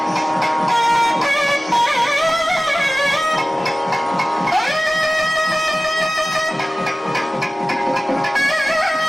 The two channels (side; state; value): both; normal; correlation 0.97